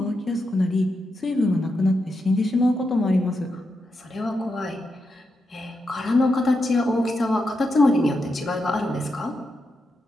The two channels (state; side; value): normal; both; correlation 0.86